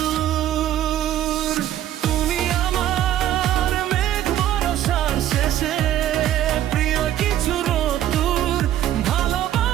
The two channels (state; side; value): quieter; left; 12.0 dB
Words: তুমি আমার মেঘ বরষার শেষে প্রিয় কিছু রোদ্দুর।